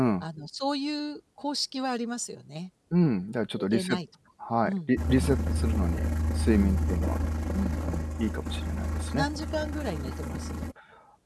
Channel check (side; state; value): both; identical; correlation 1.00